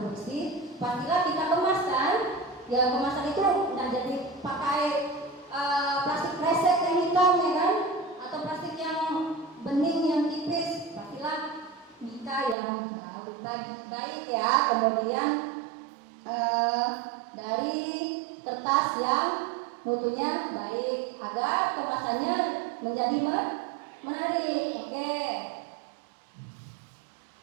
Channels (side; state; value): left; drops out; at 12.6 s